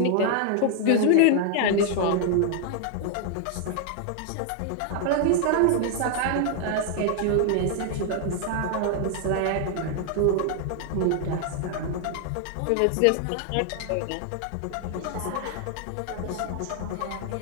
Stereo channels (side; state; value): both; different; correlation 0.00